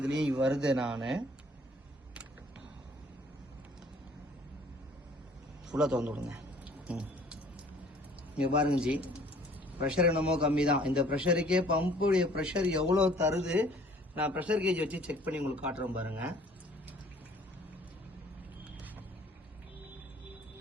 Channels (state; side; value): normal; both; correlation 0.55